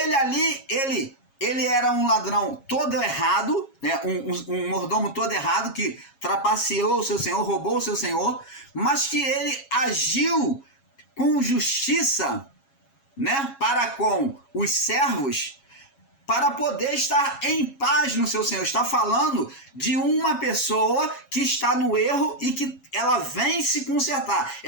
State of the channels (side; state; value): right; late; 7.3 ms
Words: era um ladrão todo errado, né? um mordomo todo errado, que trapaceou o seu senhor, roubou o seu senhor, mas que ele agiu com justiça, né? Para com os servos, para poder estar em paz no seu Senhor. Está falando de uma pessoa que está no erro e que ela vem se consertar.